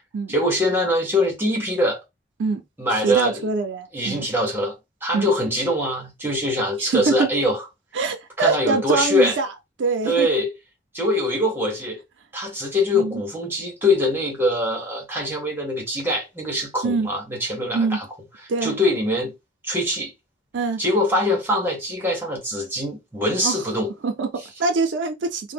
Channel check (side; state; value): both; normal; correlation 0.34